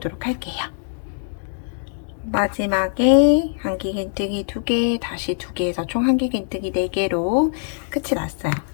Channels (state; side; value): silent; right; 64 dB below the other